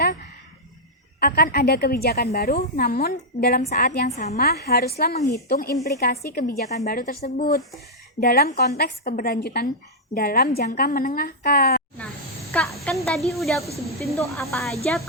akan ada kebijakan baru, namun dalam saat yang sama haruslah menghitung implikasi kebijakan baru tersebut dalam konteks keberlanjutan dalam jangka menengah, Kak. Nah, Kak, kan tadi udah aku sebutin tuh apa aja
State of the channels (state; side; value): normal; both; correlation -0.06